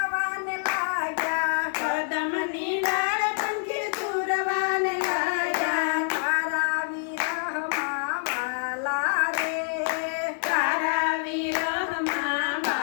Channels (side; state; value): right; silent; digital silence